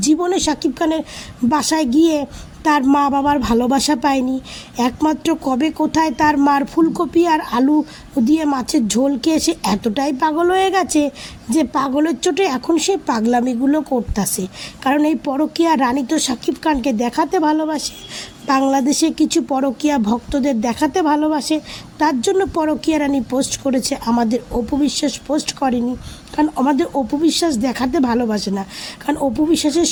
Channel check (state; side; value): identical; both; correlation 1.00